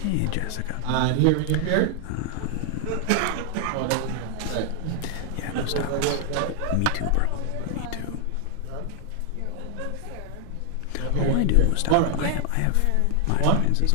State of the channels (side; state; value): both; different; correlation 0.00